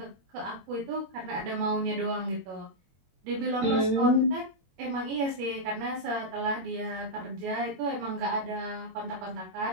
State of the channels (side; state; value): left; late; 22 ms